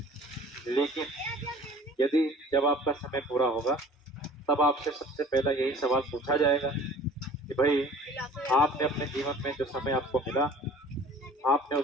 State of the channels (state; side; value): normal; both; correlation 0.47